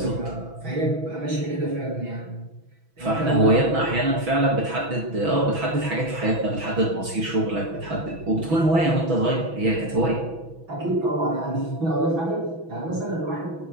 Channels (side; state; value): left; late; 6.1 ms